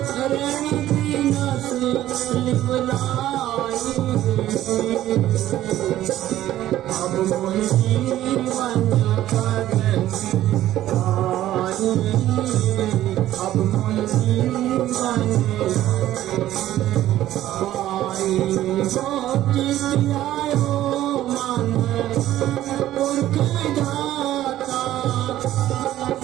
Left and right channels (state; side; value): quieter; left; 13.6 dB